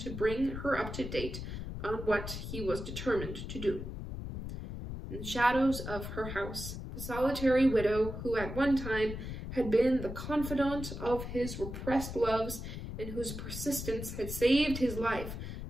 bring her up to date on what he was determined to do. In the shadows of her house, the solitary widow, who at one time had been the confidant of his repressed loves and whose persistence had saved his life,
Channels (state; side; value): noise; left; rumble, 7 dB below the sound